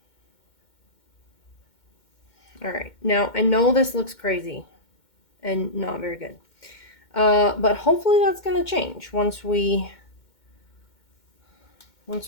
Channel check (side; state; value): right; late; 2.1 ms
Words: All right. Now, I know this looks crazy and not very good. But hopefully that's going to change once we